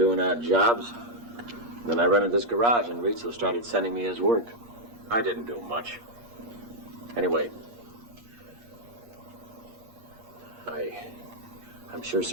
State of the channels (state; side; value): late; left; 8.5 ms